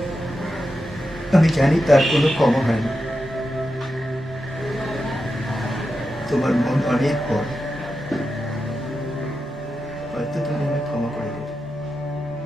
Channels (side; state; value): both; normal; correlation 0.89